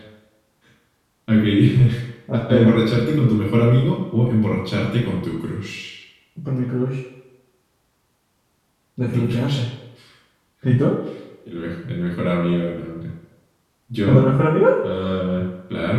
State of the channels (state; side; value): identical; both; correlation 1.00